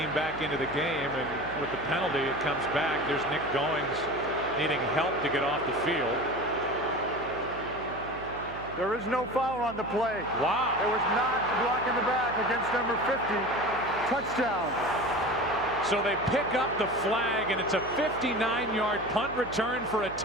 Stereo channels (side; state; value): right; noise; hum, 14 dB below the sound